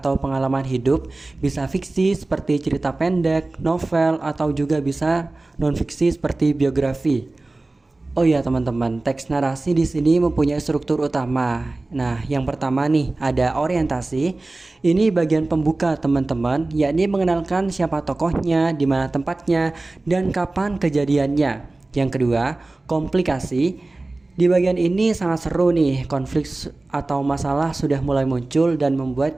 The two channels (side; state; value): left; quieter; 3.0 dB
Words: pengalaman hidup, bisa fiksi seperti cerita pendek, novel, atau juga bisa non-fiksi seperti biografi. Oh iya teman-teman, teks narasi di sini mempunyai struktur utama. Nah, yang pertama nih ada orientasi. Ini bagian pembuka teman-teman, yakni mengenalkan siapa tokohnya, di mana tempatnya, dan kapan kejadiannya. Yang kedua, komplikasi. Di bagian ini sangat seru nih, konflik atau masalah sudah mulai muncul dan